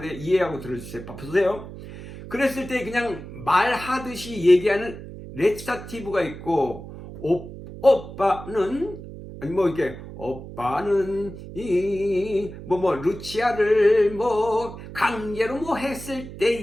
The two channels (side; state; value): right; noise; hum, 13 dB below the sound